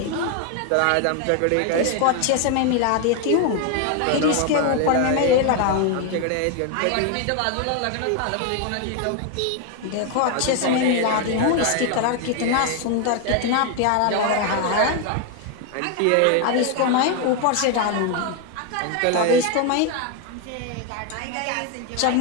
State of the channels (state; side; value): different; both; correlation 0.01